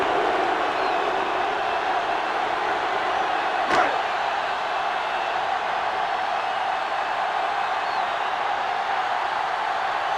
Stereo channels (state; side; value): identical; both; correlation 1.00